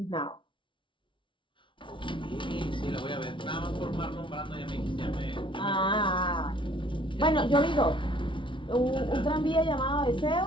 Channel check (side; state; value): right; late; 0.24 ms